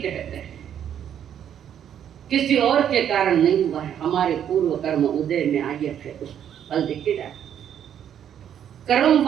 हैं, किसी और के कारण नहीं हुआ है, हमारे पूर्व कर्म उदय में आए थे, उस फल दिखे जाए। कर्म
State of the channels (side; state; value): left; quieter; 9.5 dB